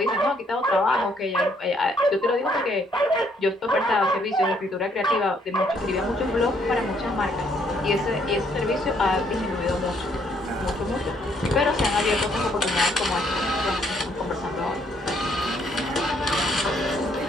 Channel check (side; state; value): both; normal; correlation 0.68